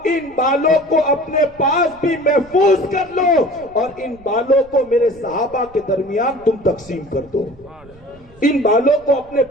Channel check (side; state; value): right; noise; rumble, 25 dB below the sound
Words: ان بالوں کو اپنے پاس بھی محفوظ کر لو، اور ان بالوں کو میرے صحابہ کے درمیان تم تقسیم کر دو، ان بالوں کو اپنے